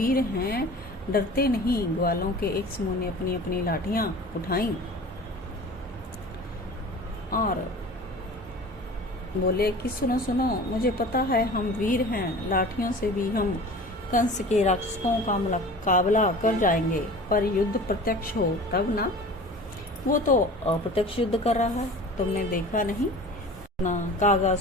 हैं, डरते नहीं। ग्वालों के एक समूह ने अपनी अपनी लाठियां उठाई और बोले कि सुनो सुनो, मुझे पता है हम वीर हैं, लाठियों से भी हम कंस के राक्षसों का मुकाबला कर जाएंगे। पर युद्ध प्रत्यक्ष हो तब ना। वो तो अप्रत्यक्ष युद्ध कर रहा है, तुमने देखा नहीं ना?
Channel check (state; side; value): normal; both; correlation 0.40